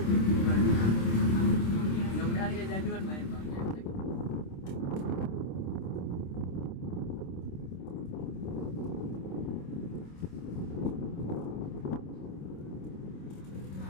Mudah-mudahan gak jaduan main Bang.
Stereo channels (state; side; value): late; right; 26 ms